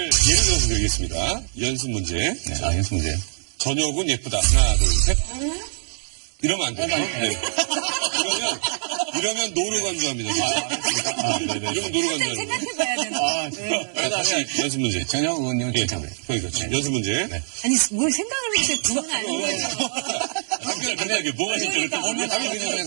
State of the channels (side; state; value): left; silent; 63 dB below the other